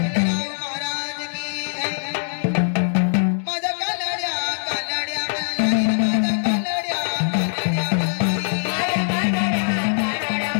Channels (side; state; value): right; silent; digital silence